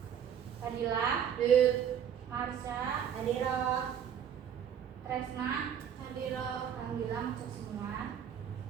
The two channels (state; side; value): quieter; left; 8.7 dB